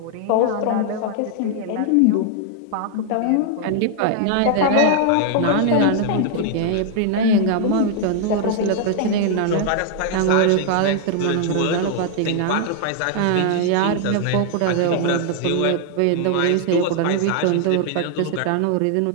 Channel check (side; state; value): both; different; correlation 0.00